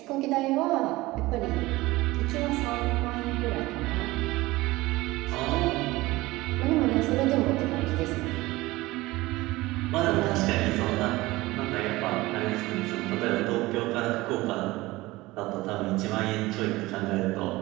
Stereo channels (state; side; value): quieter; left; 19.7 dB